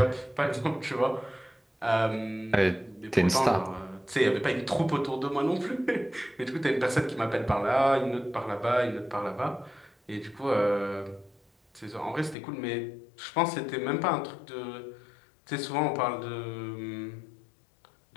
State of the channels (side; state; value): right; drops out; at 12.4 s